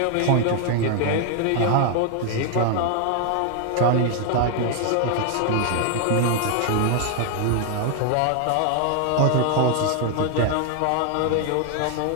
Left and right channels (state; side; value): different; both; correlation 0.00